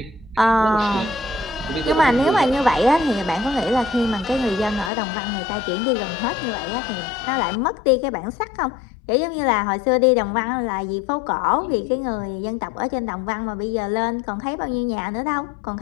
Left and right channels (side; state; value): right; drops out; at 4.9 s